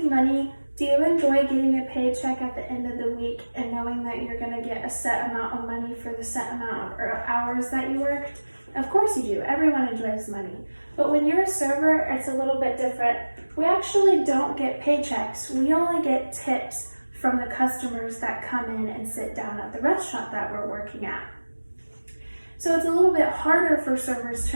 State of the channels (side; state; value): both; inverted; correlation -1.00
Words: money? Do you enjoy getting a paycheck at the end of the week and knowing that you're going to get a set amount of money for the set amount of hours that you worked? Of course you do. Everyone enjoys money. But when you're a server, it's a little bit different. We actually don't get paychecks. We only get tips from the customers that come in and sit down at the restaurant that we're working at. So it's a little bit harder for servers